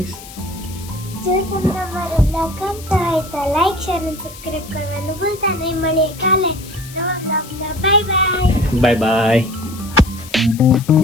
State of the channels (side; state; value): left; noise; hiss, 17 dB below the sound